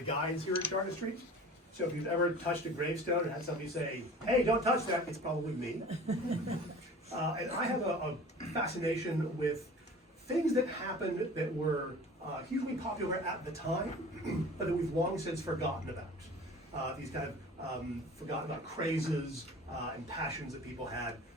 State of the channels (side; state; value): both; normal; correlation 0.42